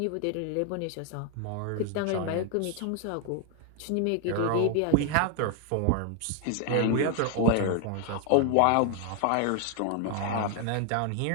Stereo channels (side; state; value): both; different; correlation 0.00